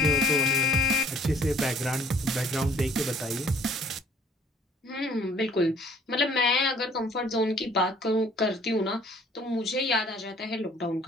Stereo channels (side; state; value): both; normal; correlation 0.57